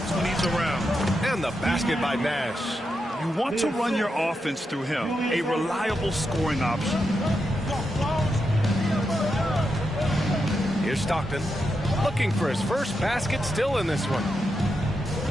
when he's around. And the basket by Nash. You want to run your offense through him, a reliable scoring option. Here's Stockton, looking for his first basket, still in this one.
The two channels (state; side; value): normal; both; correlation 0.85